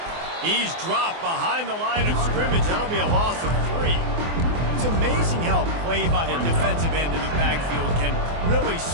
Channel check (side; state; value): left; late; 24 ms